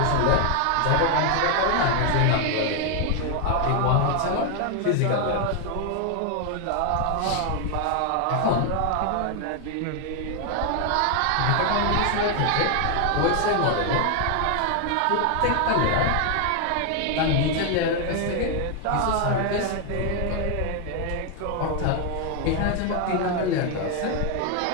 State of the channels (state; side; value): different; both; correlation 0.01